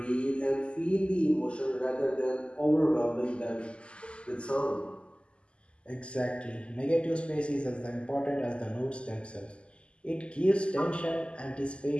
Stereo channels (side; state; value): right; late; 0.053 ms